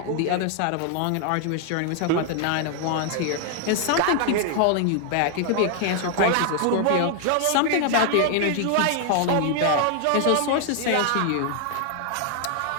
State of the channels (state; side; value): different; both; correlation 0.00